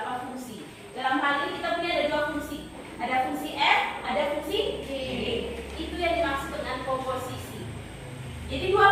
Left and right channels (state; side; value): identical; both; correlation 1.00